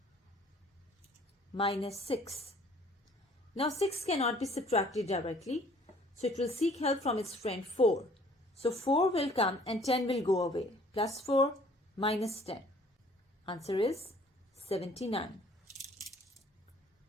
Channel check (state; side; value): normal; both; correlation 0.56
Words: minus 6. Now 6 cannot be subtracted directly, so it will seek help from its friend 4. So 4 will come and 10 will go away. Plus 4 minus 10. Answer is 79.